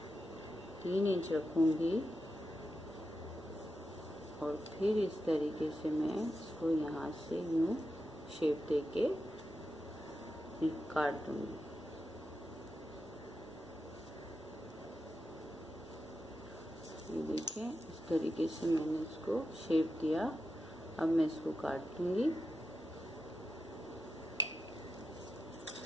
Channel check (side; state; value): both; normal; correlation 0.88